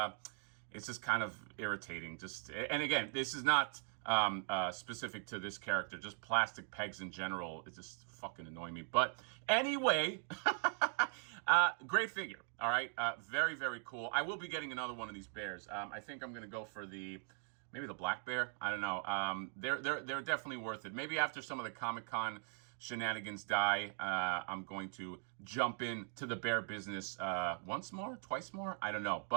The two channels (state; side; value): silent; left; 51 dB below the other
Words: kind of irritating. And again, this is not specific to this character. Just plastic pegs in general, it just fucking annoy me. But anyway, great figure. All right, very, very cool. I will be getting another one of these bears. I think I'm gonna go for maybe the black bear. I don't know. They're definitely worth it. Maybe after some of the Comic-Con shenanigans die, I'm going to jump into the bear business once more, twice more. I don't know,